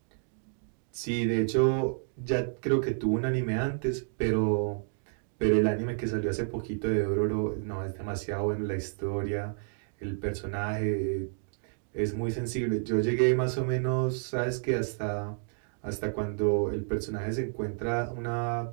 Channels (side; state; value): left; silent; digital silence